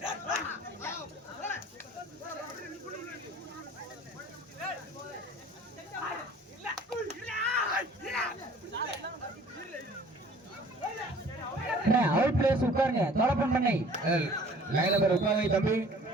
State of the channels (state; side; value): normal; both; correlation 0.51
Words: அவுட் பிளேஸ் உட்காருங்க. தோழப்பன் பண்ணை லைன் நம்பர் உட்காருங்க தம்பி.